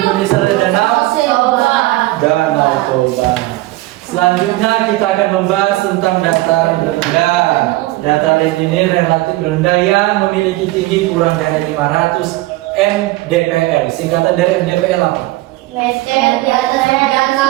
ada danau Danau Toba. Selanjutnya kita akan membahas tentang dataran rendah. Dataran ini relatif rendah yang memiliki tinggi kurang dari 500 mdpl. Singkatan dari mdpl apa? Meter di atas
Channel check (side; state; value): left; quieter; 18.7 dB